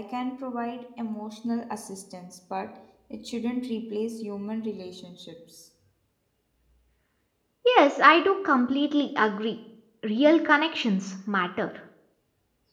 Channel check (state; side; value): identical; both; correlation 1.00